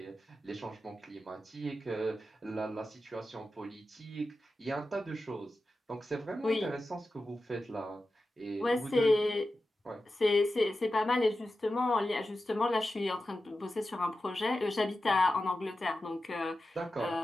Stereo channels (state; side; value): normal; both; correlation 0.92